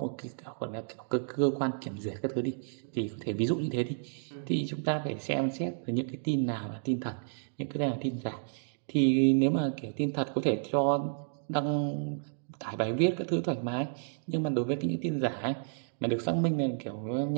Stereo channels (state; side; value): silent; left; digital silence